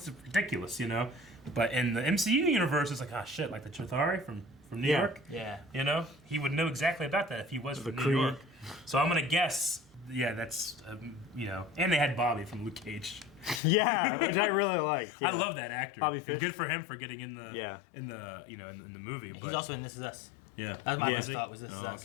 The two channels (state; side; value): drops out; right; at 13.6 s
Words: ridiculous, But in the MCU universe, it's like, oh shit, like the Chitauri from New Yeah. York. Yeah. He would know exactly about that if he was from New Kree. York. So I'm gonna guess, yeah, that's and they had Bobby from Luke Cage. Yeah, which I really liked. I yeah. love that actor. Bobby And Fish. good for him for getting in the Yeah. in the in the movie. He's But also in This Is Us. yeah, That's my Yeah. first thought was This Is Oh, Us.